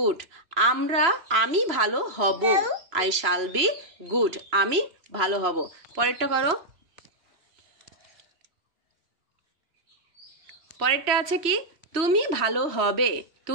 আমি ভালো হব, আই শ্যাল বি গুড, আমি ভালো হব। পরেরটা করো। পরেরটা আছে কি, তুমি ভালো হবে,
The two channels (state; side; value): late; left; 2.9 ms